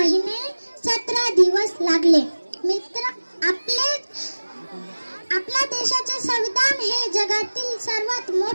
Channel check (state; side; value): inverted; both; correlation -1.00